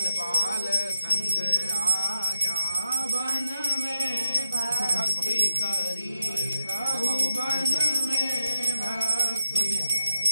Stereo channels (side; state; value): both; inverted; correlation -0.88